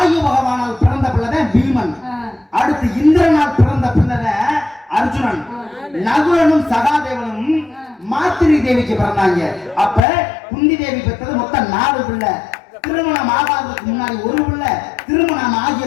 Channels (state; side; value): drops out; right; at 10.0 s